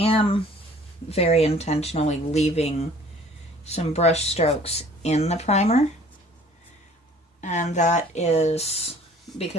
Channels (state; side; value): normal; both; correlation 0.52